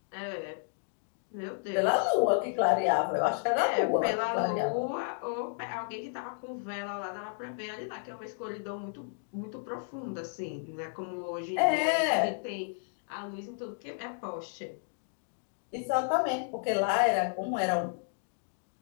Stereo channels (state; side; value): silent; right; digital silence